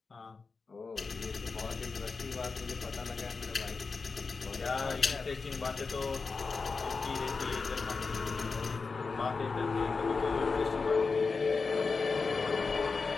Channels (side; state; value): right; quieter; 4.5 dB